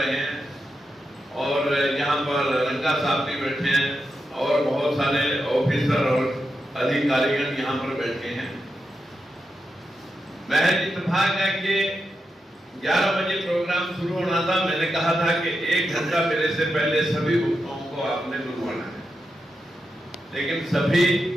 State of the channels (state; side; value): normal; both; correlation 0.87